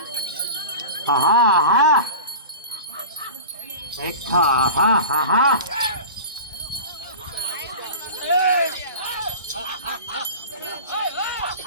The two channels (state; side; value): inverted; both; correlation -0.34